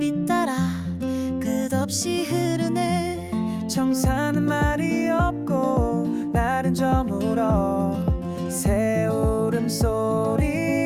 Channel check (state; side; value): identical; both; correlation 1.00